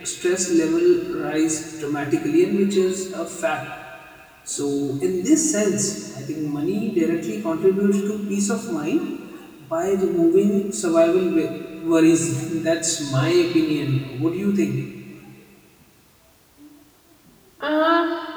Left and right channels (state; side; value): identical; both; correlation 1.00